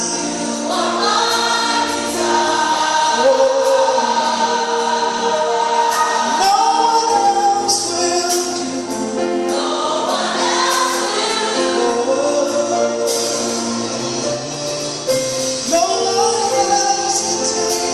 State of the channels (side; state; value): both; identical; correlation 1.00